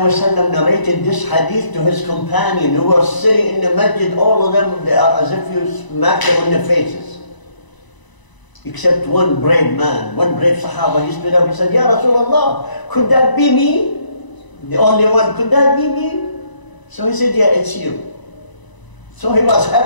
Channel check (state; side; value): late; right; 1.0 ms